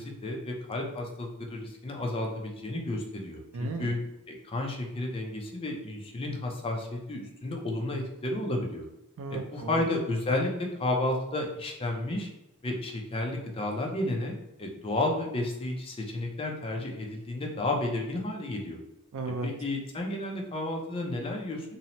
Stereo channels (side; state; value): both; normal; correlation 0.46